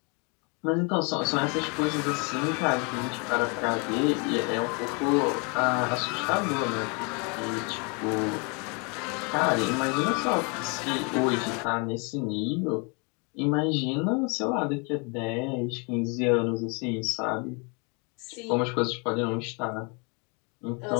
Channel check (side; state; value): right; quieter; 32.9 dB